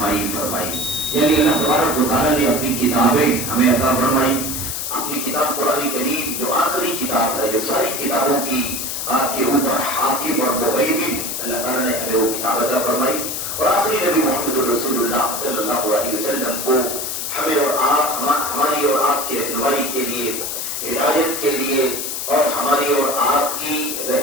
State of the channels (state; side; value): noise; left; hiss, 4 dB below the sound